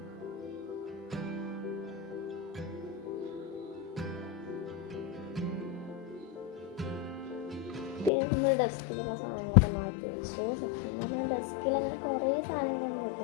പിന്നെ നമ്മൾ ഡെസ്കിലുള്ള സാധനങ്ങളൊക്കെ മാറ്റി വെച്ചു. സത്യം പറഞ്ഞാൽ ഡെസ്കിൽ അങ്ങനെ കുറേ സാധനങ്ങളൊന്നും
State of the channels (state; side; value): drops out; right; at 8.1 s